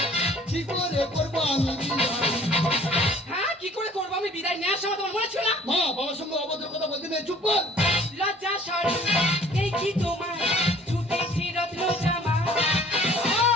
কি করে করবো আমি বিদায়? হ্যাঁ কি করে করবো আমি বিদায় নেওয়ার সময় তোমার মনে ছিল না মা বাবার সঙ্গে অভদ্র কথা বলতে নেই, চুপ কর। লজ্জা সরম এই কি তোমার ছুটেছি রত্ন জামা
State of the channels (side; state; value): both; normal; correlation 0.53